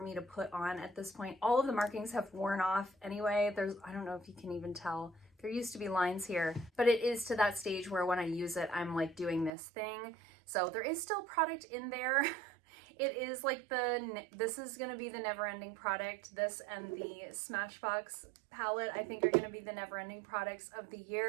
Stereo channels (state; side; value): drops out; left; at 9.5 s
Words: me to put on at this point. All of the markings have worn off anyway. I don't know if you can even tell. There used to be lines here, but it is to that stage where when I use it, I'm like doing this thing. So there is still product in there. It is like this is going to be the never-ending product. This and the Smashbox palette, I think, are going to be the never-ending products of the